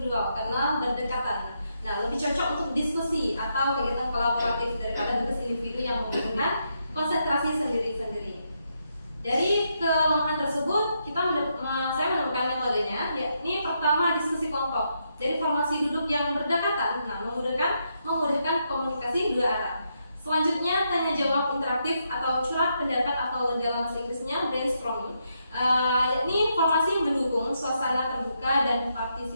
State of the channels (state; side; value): inverted; both; correlation -0.80